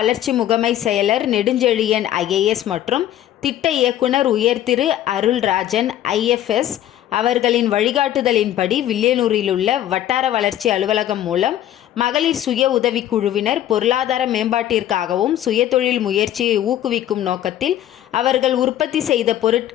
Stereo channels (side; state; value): right; quieter; 12.1 dB